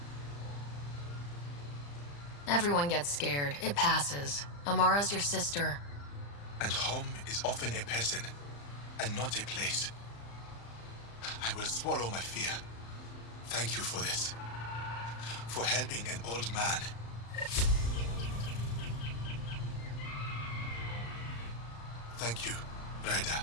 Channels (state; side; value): late; right; 35 ms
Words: Everyone gets scared. It passes. Amara's your sister. And home is often a person, and not a place. I will swallow my fear. Thank you for this. For helping an old man. Thank you,